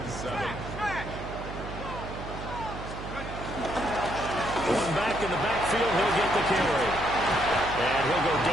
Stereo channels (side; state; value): right; noise; hum, 9 dB below the sound